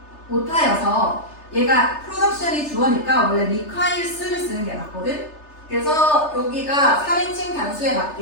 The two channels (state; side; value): late; right; 3.3 ms